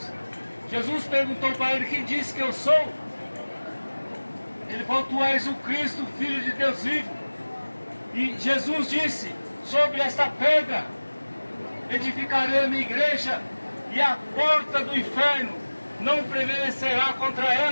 Jesus perguntou para ele, quem disse que eu sou? Ele falou, tu és o Cristo, Filho de Deus vivo. E Jesus disse, sobre esta pedra edificarei a minha igreja, e a porta do inferno não prevalecerá contra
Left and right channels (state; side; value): inverted; both; correlation -1.00